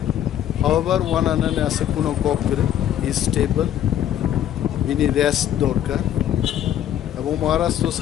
হাওয়াবার ওয়ান আনানে আছে কোনো কপ করে স্টেবল বিনি রেস্ট দরকার এবং মহারাজ তো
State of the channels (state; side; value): quieter; right; 10.9 dB